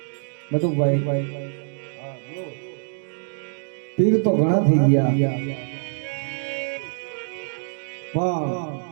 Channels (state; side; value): silent; left; digital silence